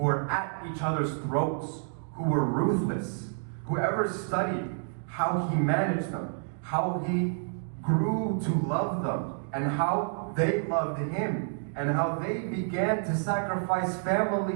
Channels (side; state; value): left; silent; digital silence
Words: were at each other's throats, who were ruthless, whoever studied how he managed them, how he grew to love them, and how they loved him, and how they began to sacrifice